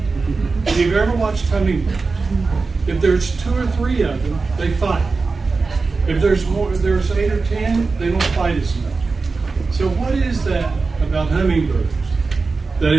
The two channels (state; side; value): quieter; left; 4.2 dB